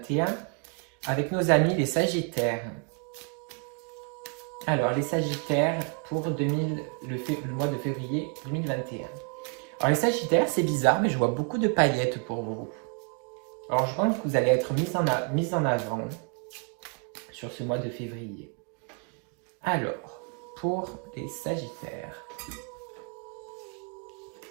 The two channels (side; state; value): left; quieter; 39.2 dB